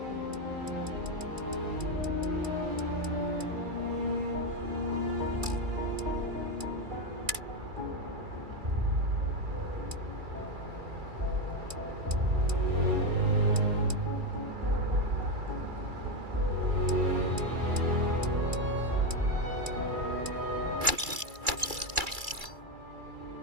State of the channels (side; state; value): left; late; 2.3 ms